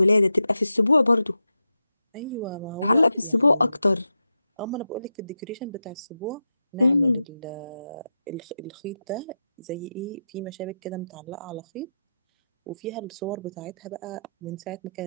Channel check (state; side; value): inverted; both; correlation -0.89